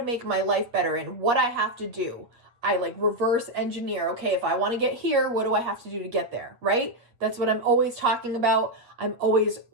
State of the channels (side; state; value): left; late; 8.5 ms